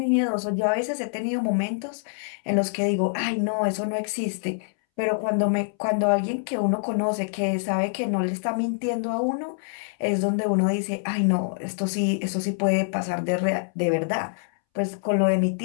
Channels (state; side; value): silent; right; 62 dB below the other